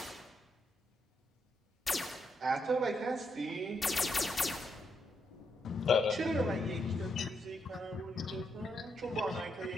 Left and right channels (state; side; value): normal; both; correlation 0.80